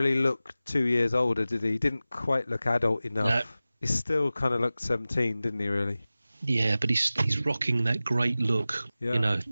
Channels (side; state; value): both; inverted; correlation -0.96